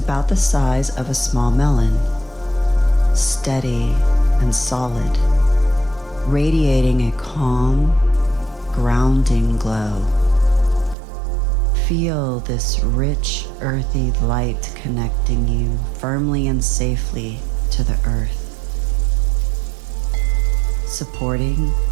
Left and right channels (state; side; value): drops out; left; at 11.0 s